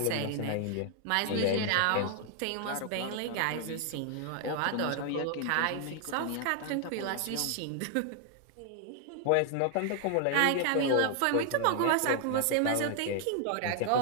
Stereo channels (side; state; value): both; different; correlation 0.00